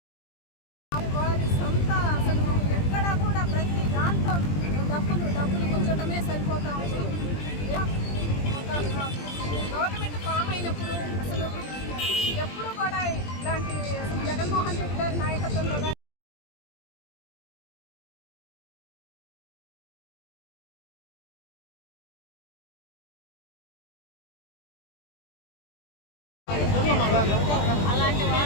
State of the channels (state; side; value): late; right; 20 ms